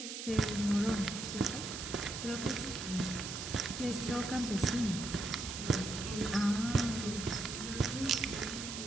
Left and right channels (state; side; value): noise; right; hiss, 7 dB below the sound